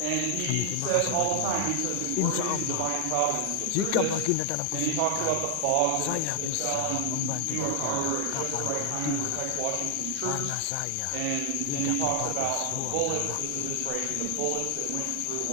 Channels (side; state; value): both; different; correlation 0.00